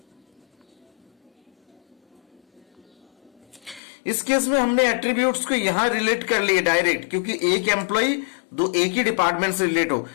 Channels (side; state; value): right; drops out; at 3.8 s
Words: इस केस में हमने एट्रीब्यूट्स को यहां रिलेट कर लिए डायरेक्ट, क्योंकि एक एम्प्लॉय दो एक ही डिपार्टमेंट से रिलेट हो,